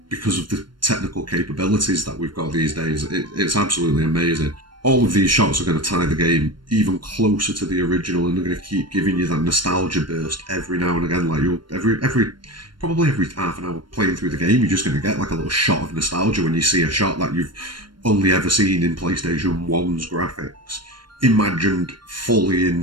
because of the technical capabilities that we've got these days, it's absolutely amazing. All of these shots are going to tie the game even closer to the original, and they're going to keep giving you that nostalgia burst every now and again. Like, you'll probably every half an hour playing through the game, you're just going to get like a little shot of nostalgia when you see a shot that you've only ever seen in PlayStation 1's graphics, imagined fully in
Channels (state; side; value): late; left; 0.72 ms